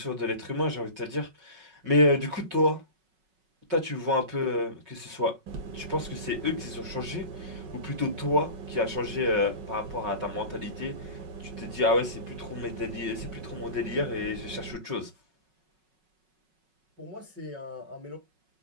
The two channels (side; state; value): left; late; 5.4 ms